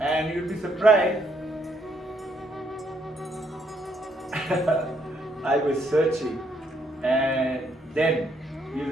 you'll be surprised. I was searching. And then, you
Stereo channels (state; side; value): normal; both; correlation 0.72